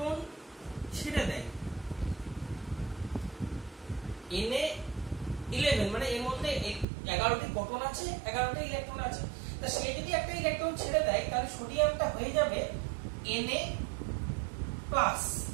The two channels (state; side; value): drops out; left; at 6.9 s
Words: ছেড়ে দেয় Na11, মানে এর মধ্যে 11টি প্রোটন আছে, 11টি ইলেকট্রন আছে, তা সে যদি একটা ইলেকট্রন ছেড়ে দেয় তাহলে সোডিয়ামটা হয়ে যাবে Na+।